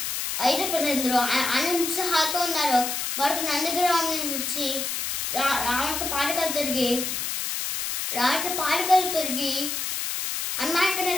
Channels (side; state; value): left; noise; hiss, 2 dB below the sound